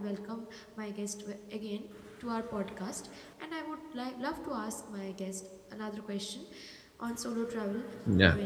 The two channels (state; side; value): identical; both; correlation 1.00